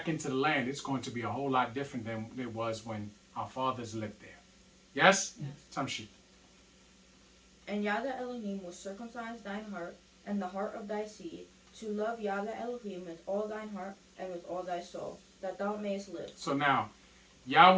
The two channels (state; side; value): identical; both; correlation 1.00